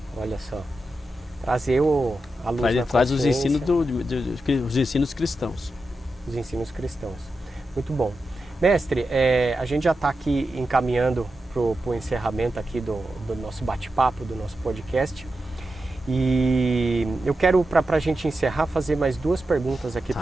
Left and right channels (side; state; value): both; normal; correlation 0.90